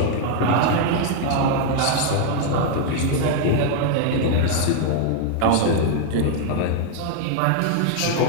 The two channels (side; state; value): both; different; correlation 0.00